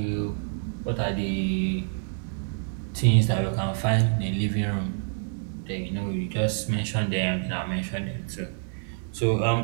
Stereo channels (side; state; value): left; silent; 58 dB below the other